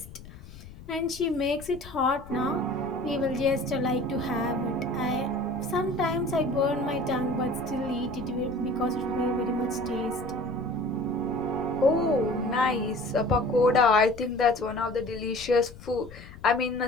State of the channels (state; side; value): noise; left; rumble, 17 dB below the sound